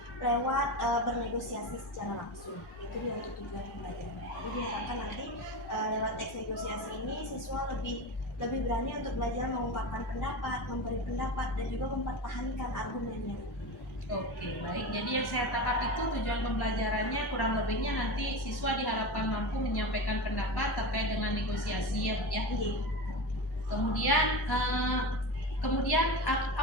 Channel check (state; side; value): normal; both; correlation 0.24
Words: lewat bernegosiasi secara langsung. Itu dia untuk tujuan pembelajaran. Jadi diharapkan nanti lewat teks negosiasi ini siswa lebih berani untuk belajar mengungkapkan pendapat, memberi pendapat, dan juga mempertahankan argumennya. Oke, baik. Jadi yang saya tangkap itu tujuan pembelajarannya kurang lebihnya nanti siswa diharapkan mampu menyampaikan pendapat terkait dengan negosiasi ya Bu ya. Kemudian